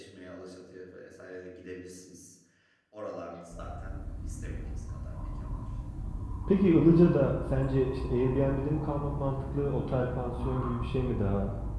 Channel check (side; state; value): both; identical; correlation 1.00